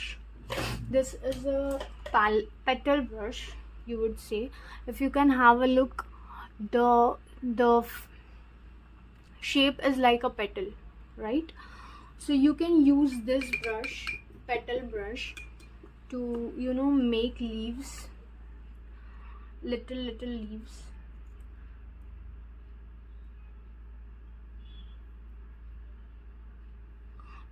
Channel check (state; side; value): identical; both; correlation 1.00